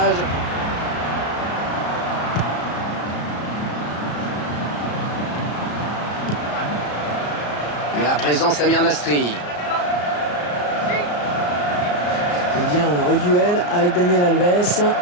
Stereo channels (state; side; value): late; right; 34 ms